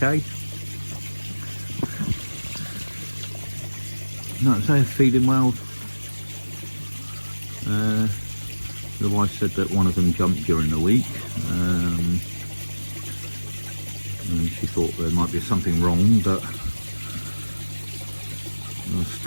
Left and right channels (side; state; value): both; inverted; correlation -1.00